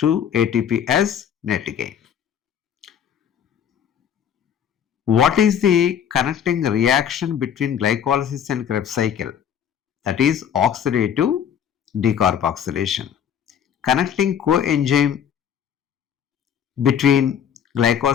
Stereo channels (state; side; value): quieter; right; 8.6 dB